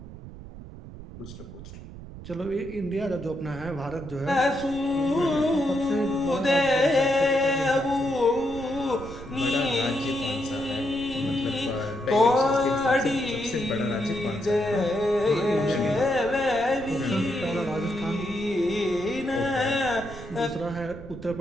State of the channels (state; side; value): noise; right; rumble, 14 dB below the sound